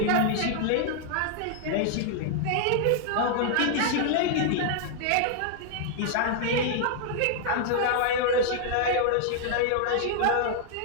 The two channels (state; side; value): different; both; correlation -0.01